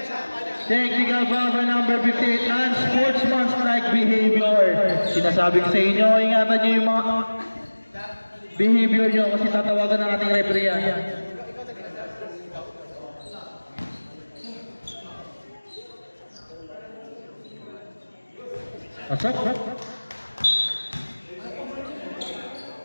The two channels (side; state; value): both; inverted; correlation -1.00